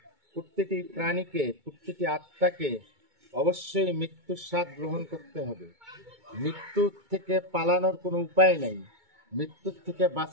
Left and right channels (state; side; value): late; left; 2.2 ms